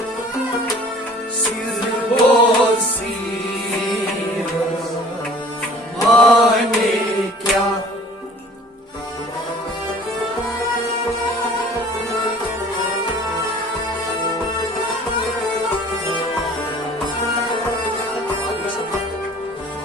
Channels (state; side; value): normal; both; correlation 0.49